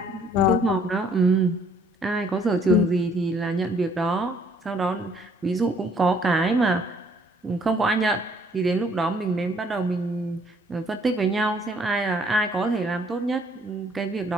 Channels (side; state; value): both; normal; correlation 0.63